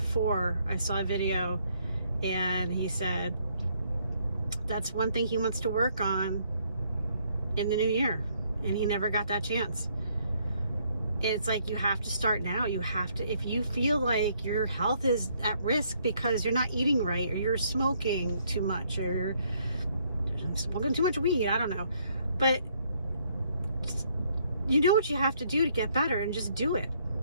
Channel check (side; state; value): both; inverted; correlation -0.69